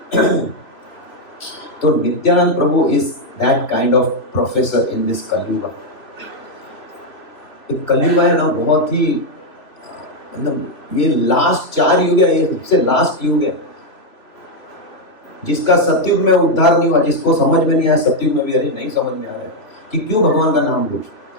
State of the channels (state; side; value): late; right; 3.0 ms